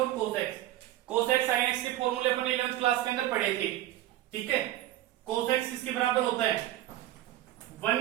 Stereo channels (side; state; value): left; quieter; 14.1 dB